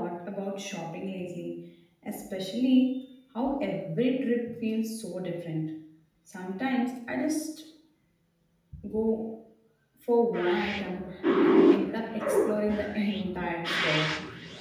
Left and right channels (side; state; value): both; identical; correlation 1.00